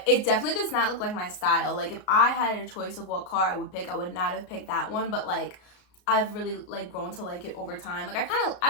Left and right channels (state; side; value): late; right; 33 ms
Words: it definitely does not look like my style. Like, if I had a choice of what car I would pick, I would not have picked that one. But, like, I've really, like, grown to like it over time. Like,